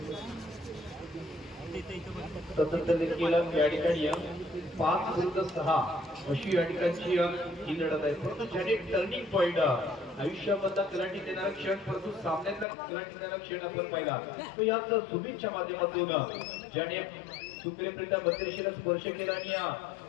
स्वतंत्र देखील या ठिकाणी 5 विरुद्ध 6 अशी या ठिकाणची ही लढत आहे. परंतु ज्याने टर्निंग पॉइंट आयुष्यामधला कलाटी देणारा क्षण परंतु सामन्यातला कलाटी देणारा क्षण आपण पाहिला तो याच सुमितच्या माध्यमातून ज्याने सुप्रियप्रिता बत्तीसशीला स्पर्श केला आणि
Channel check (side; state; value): right; drops out; at 12.7 s